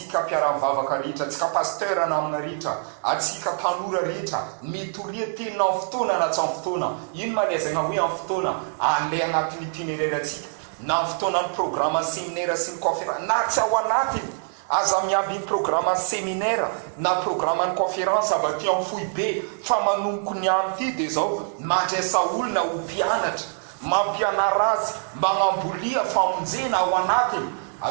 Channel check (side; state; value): left; silent; digital silence